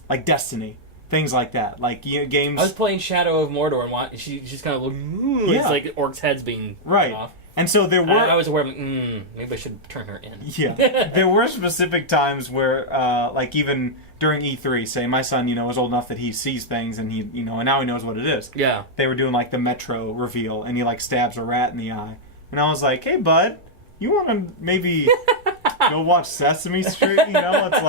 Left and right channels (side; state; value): both; normal; correlation -0.04